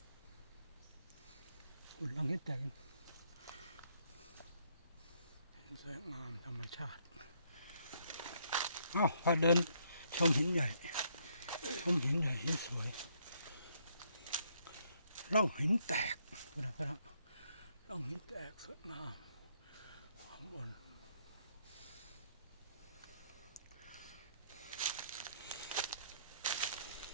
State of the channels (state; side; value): inverted; both; correlation -0.71